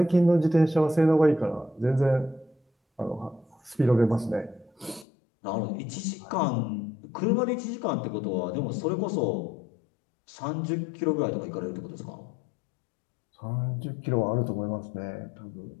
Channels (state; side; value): drops out; right; at 5.1 s